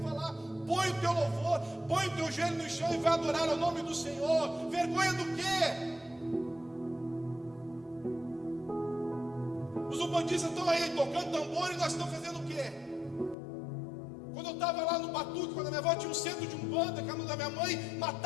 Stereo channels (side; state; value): right; drops out; at 13.4 s